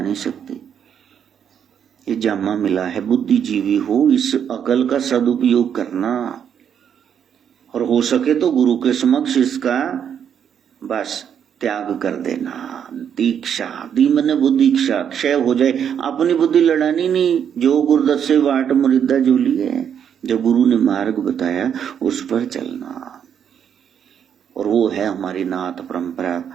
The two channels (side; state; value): left; quieter; 8.4 dB